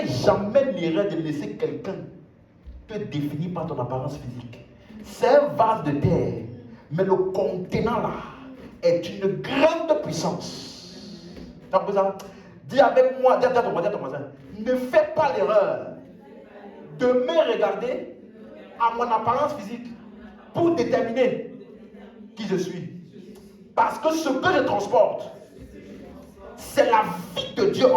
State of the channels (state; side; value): identical; both; correlation 1.00